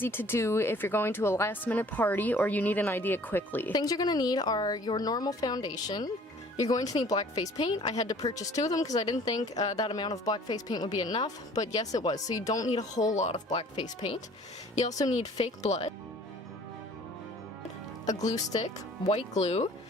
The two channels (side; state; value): both; normal; correlation 0.52